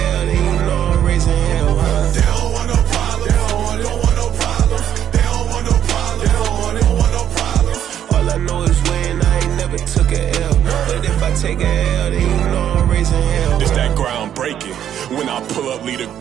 then you know I'm raising hell, huh? They don't want no problems, they don't want no problems. They don't want no problems, they don't want no problems. All I know is win, I ain't never took a L. But if I take a L, then you know I'm raising hell. It's that ground breaking. When I pull up, leave the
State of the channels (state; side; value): quieter; left; 10.2 dB